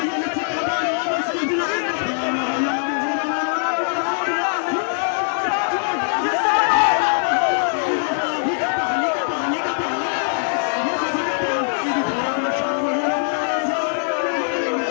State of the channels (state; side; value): silent; right; digital silence